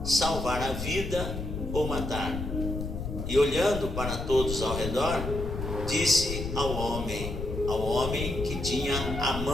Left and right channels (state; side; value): noise; left; rumble, 5 dB below the sound